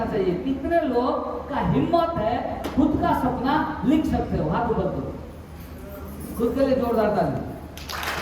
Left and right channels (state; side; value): identical; both; correlation 1.00